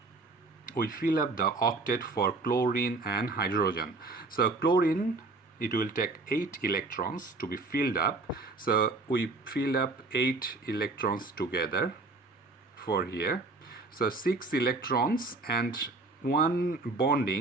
octet for chlorine and hydrogen. So chlorine, it will take 8 electrons to be filled up. So we fill up 8 electrons together for here. So 6 electrons and one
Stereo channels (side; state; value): left; quieter; 3.4 dB